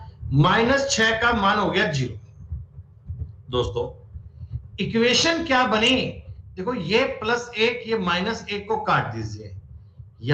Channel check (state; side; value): identical; both; correlation 1.00